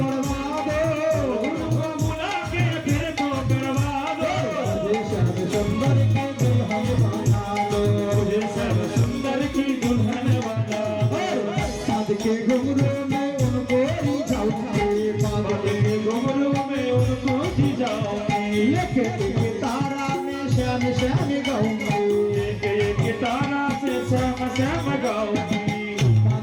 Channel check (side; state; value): both; identical; correlation 1.00